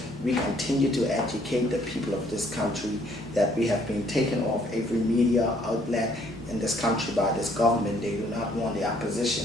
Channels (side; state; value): both; normal; correlation 0.64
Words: we continue to educate the people of this country that we have been taken off every media outlet in this country by this government. They do not want the